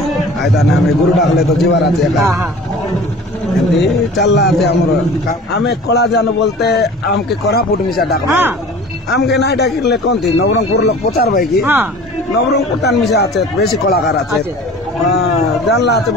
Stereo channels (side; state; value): both; normal; correlation 0.42